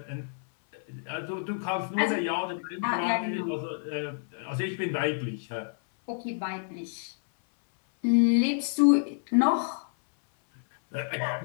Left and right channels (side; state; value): right; silent; 59 dB below the other